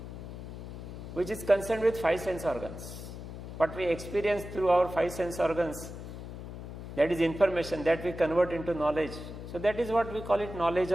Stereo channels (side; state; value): left; noise; hum, 10 dB below the sound